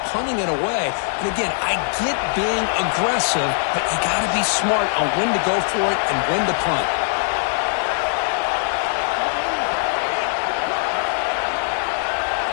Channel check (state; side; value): silent; right; digital silence